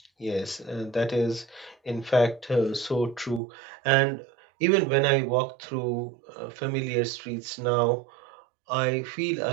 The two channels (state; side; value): drops out; left; at 3.4 s